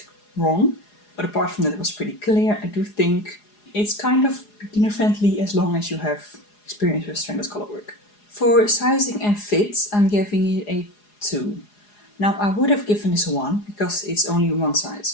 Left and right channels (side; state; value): right; late; 4.8 ms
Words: wrong. But apart from that, it was pretty clear. I do think it's kind of beginner friendly as long as you have experience with stranded color work. For sizing and fit, I'm giving it a 2. Now I would have given this a 1 because it's only one